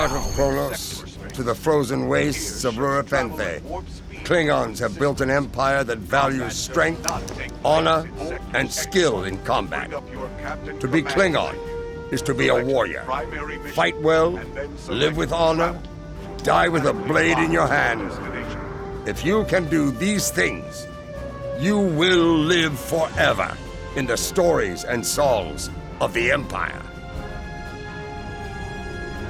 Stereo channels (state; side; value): identical; both; correlation 1.00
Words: of Kronos to the frozen wastes of Rurapenthe, Klingons have built an empire that values strength, honor, and skill in combat. To be Klingon is to be a warrior. Fight well, live with honor, die with a blade in your hand. If you can do these things, you will live forever in the stories and songs of the Empire.